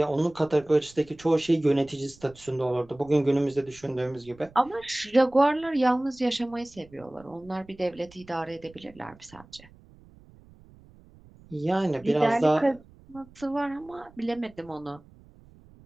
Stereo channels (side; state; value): right; noise; rumble, 25 dB below the sound